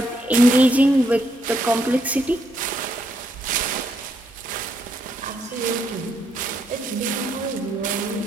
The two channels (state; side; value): normal; both; correlation 0.76